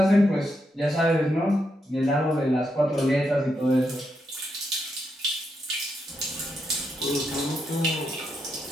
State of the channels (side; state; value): both; normal; correlation 0.82